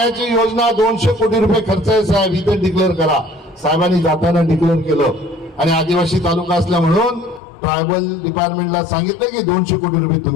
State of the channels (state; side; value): drops out; right; at 7.4 s